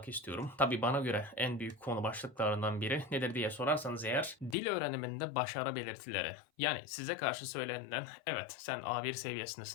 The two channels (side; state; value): right; drops out; at 4.5 s